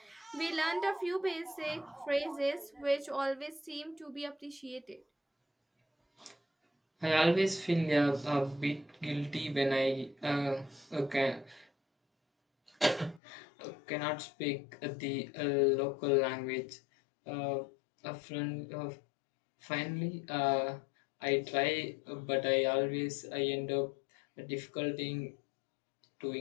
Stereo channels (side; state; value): right; drops out; at 13.2 s